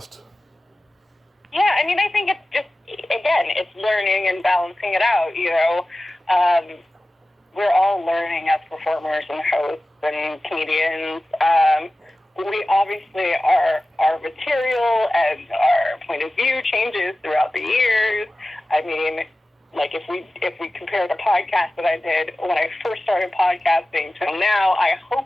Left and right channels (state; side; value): normal; both; correlation 0.95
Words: Yeah, I mean, I think it's just, again, it's learning and balancing it out, you know. Um, we're all learning as performers and hosts and comedians. We obviously, our material and our point of view changes throughout the years. I mean, like if we compare the podcast that I did when I first started podcasting till now, I